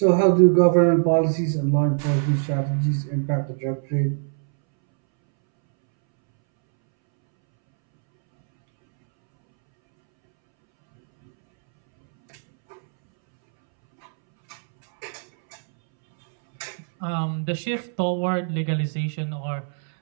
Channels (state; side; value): silent; left; 64 dB below the other